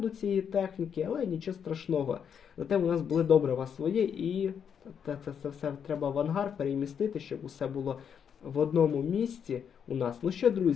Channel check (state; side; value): quieter; right; 7.7 dB